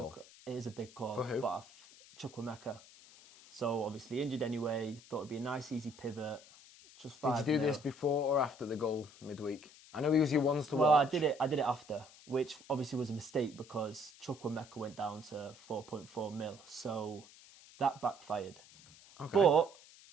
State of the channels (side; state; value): left; noise; hiss, 22 dB below the sound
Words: It is a big call. For who? But Chukwuemeka. So obviously injured anyway. Thought it'd be a nice, easy pivot. Just 5 Did you do this before or after the goal midweek? I know he was your ones to Well, watch. I did it after, which obviously was a mistake because Chukwuemeka went down to 4.4 mil. So that backfired. Okay. But